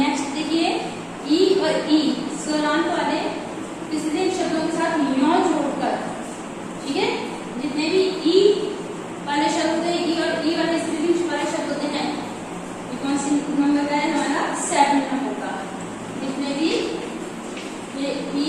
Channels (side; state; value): both; identical; correlation 1.00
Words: देखिए, ई और ई स्वरांत वाले स्त्रीलिंग शब्दों के साथ यो जोड़कर, ठीक है। जितने भी ई वाले शब्द होते हैं, ई और ई वाले स्त्रीलिंग वाले शब्द होते हैं, कौन सी नंबर का है हमारा, 7 नंबर का। जितने भी ये ई